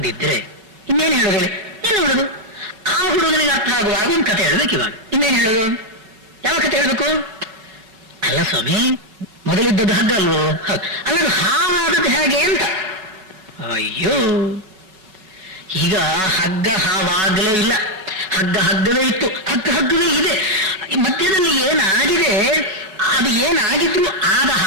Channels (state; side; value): late; left; 5.3 ms